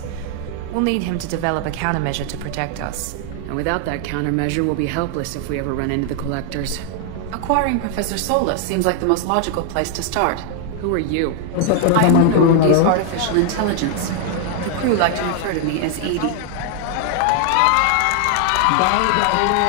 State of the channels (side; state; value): both; different; correlation 0.00